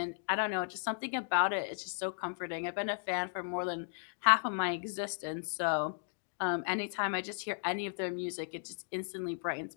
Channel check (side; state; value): right; silent; digital silence